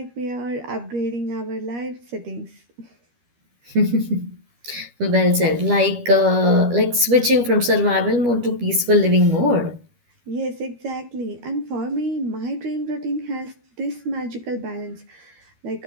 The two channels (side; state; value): left; late; 13 ms